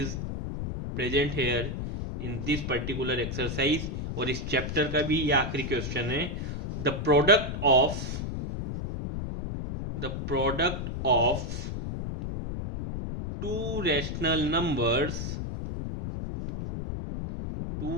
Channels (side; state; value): left; noise; rumble, 4 dB below the sound